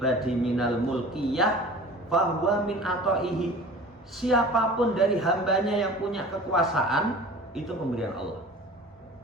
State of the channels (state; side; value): normal; both; correlation 0.42